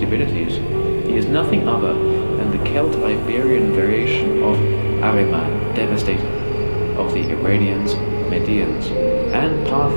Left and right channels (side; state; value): both; inverted; correlation -1.00